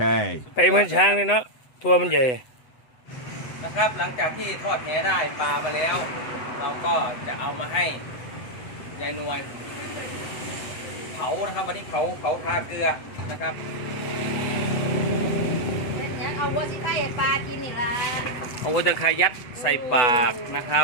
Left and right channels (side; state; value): right; late; 8.0 ms